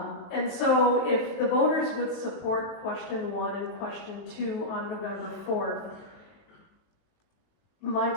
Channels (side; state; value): right; late; 19 ms